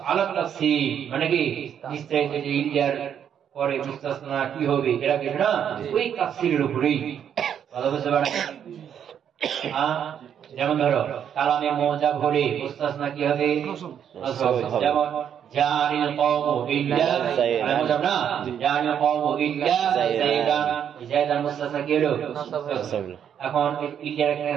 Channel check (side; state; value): left; quieter; 8.8 dB